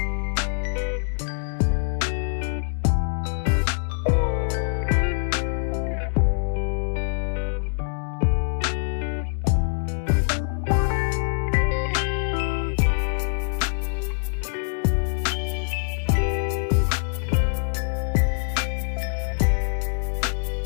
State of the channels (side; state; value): right; silent; digital silence